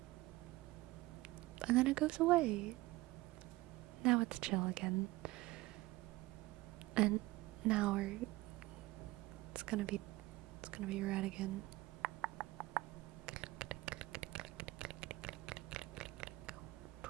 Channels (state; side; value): quieter; left; 19.5 dB